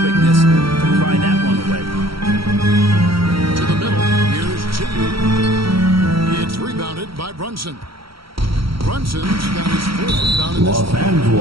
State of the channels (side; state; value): left; late; 0.75 ms